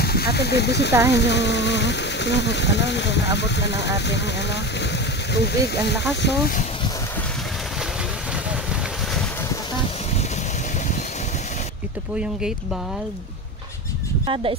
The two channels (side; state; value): both; normal; correlation 0.25